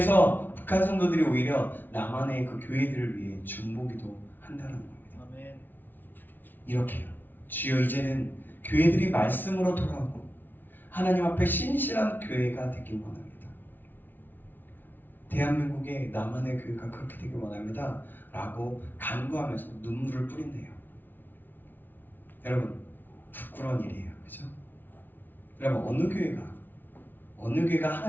북한 성도들이 오히려 남한의 그 교회들을 위해 중보기도 한다는 겁니다. 아멘. 이렇게요. 주여 이제는 교회들이 말씀으로 돌아오고 하나님 앞에 신실한 교회가 되길 원합니다. 대한민국의 남한의 교회가 그렇게 되길 원합니다. 라고 간구하면서 눈물을 뿌린대요. 여러분 부끄러운 일이에요. 그죠? 여러분 어느 교회가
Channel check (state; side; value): late; right; 0.091 ms